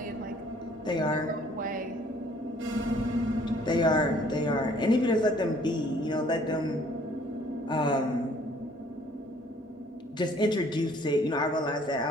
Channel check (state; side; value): normal; both; correlation 0.58